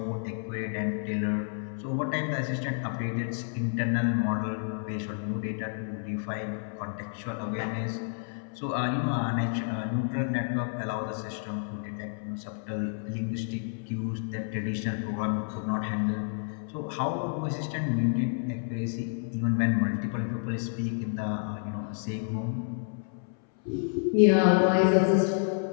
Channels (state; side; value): silent; right; 58 dB below the other